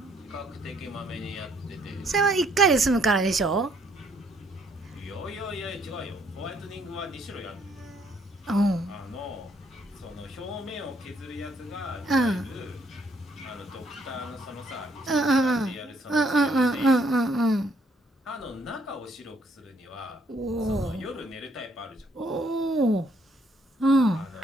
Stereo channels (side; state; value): both; normal; correlation 0.67